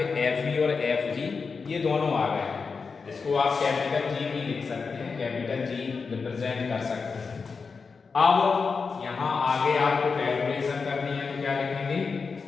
Fe और Fg ये दोनों आ गए हैं। इसको आप कैपिटल G भी लिख सकते हैं, कैपिटल G रिप्रेजेंट कर सकते हैं। अब यहाँ आगे आपको कैलकुलेशन करनी है तो क्या लिखेंगे,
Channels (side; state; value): right; quieter; 5.0 dB